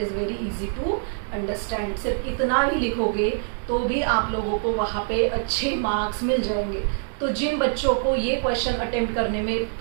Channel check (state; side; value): silent; left; digital silence